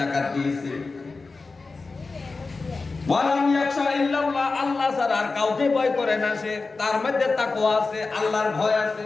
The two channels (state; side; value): quieter; right; 3.9 dB